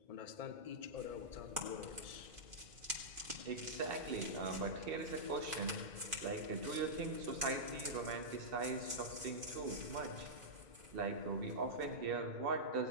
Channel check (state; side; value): late; left; 2.5 ms